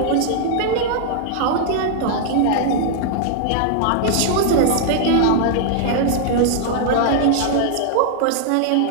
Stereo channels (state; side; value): different; both; correlation -0.01